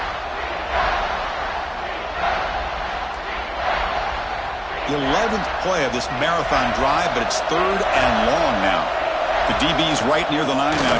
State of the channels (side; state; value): both; identical; correlation 1.00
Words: The 11th play of this marathon drive, but it's 3rd and long now. The DB's right near the line now,